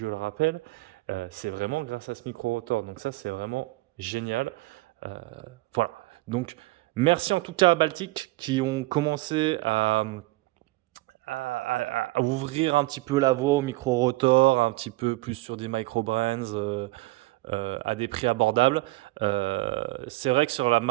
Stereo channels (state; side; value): quieter; left; 20.9 dB